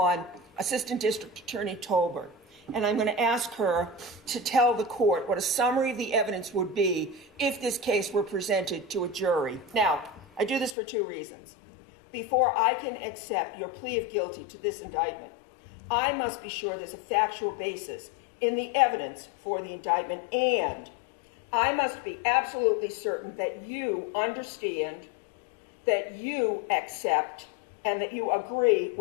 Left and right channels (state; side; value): drops out; right; at 10.8 s